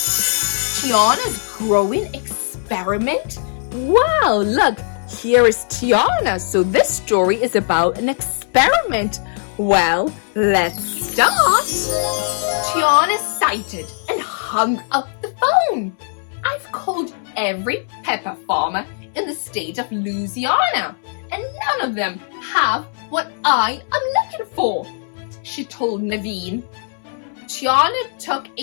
Tiana's growing experiment. Wow, look, here is Tiana. So this story is about an experiment. Well, let's start. Tiana sighted and hung up the phone. I've called every pepper farmer in the state of Louisiana, and none of them have what I am looking for, she told Naveen. Tiana took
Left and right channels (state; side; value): silent; right; 62 dB below the other